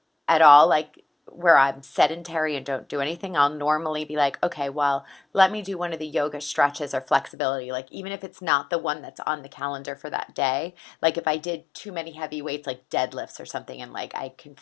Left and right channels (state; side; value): drops out; right; at 7.4 s